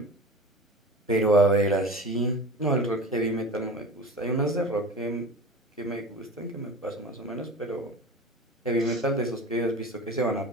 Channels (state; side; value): normal; both; correlation 0.34